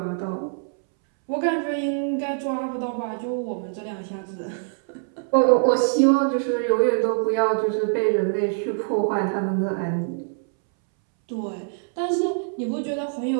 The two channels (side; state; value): left; silent; 62 dB below the other